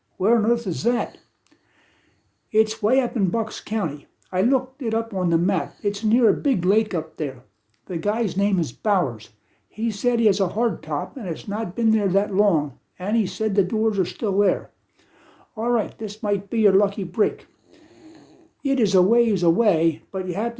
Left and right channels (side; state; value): both; identical; correlation 1.00